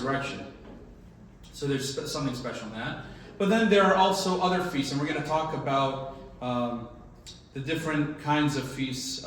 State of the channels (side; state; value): both; identical; correlation 1.00